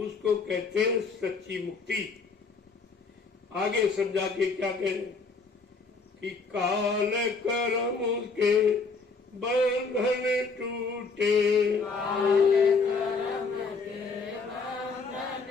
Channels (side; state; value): right; quieter; 4.4 dB